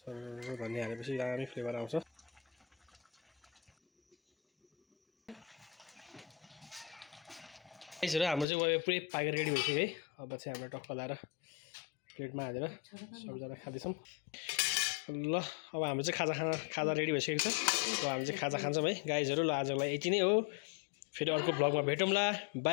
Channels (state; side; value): drops out; right; at 8.5 s